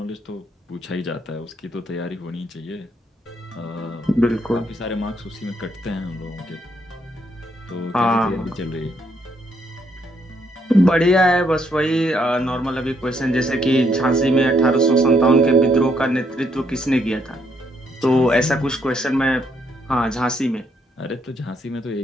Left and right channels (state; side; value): normal; both; correlation 0.73